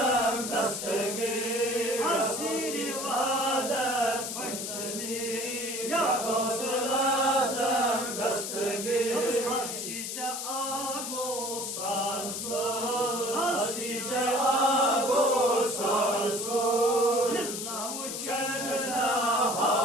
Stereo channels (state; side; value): noise; left; hiss, 5 dB below the sound